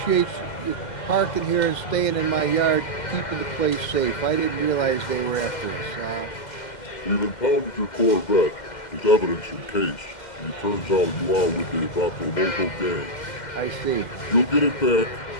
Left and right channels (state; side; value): late; right; 2.1 ms